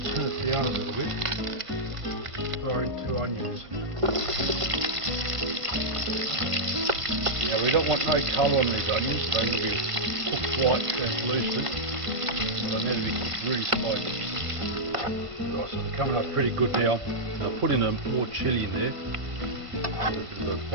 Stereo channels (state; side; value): late; left; 1.5 ms